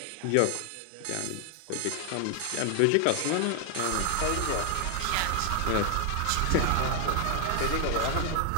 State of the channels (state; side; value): different; both; correlation 0.00